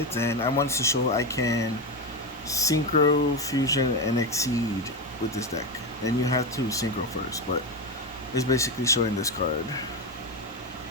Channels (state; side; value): normal; both; correlation 0.13